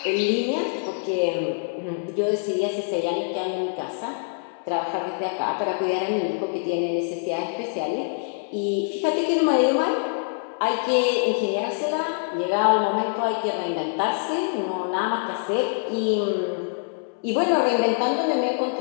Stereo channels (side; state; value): right; silent; 62 dB below the other